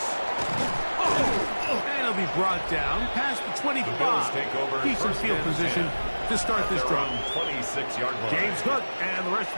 And he'll be brought down past the 25. Decent field position to start this drive. 26-yard line. James Cook and the rest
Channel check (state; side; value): inverted; both; correlation -1.00